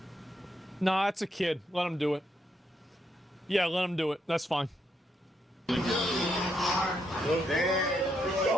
Nah, it's a kid. Let him do it. Yeah, let him do it. That's fine.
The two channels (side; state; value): both; normal; correlation 0.78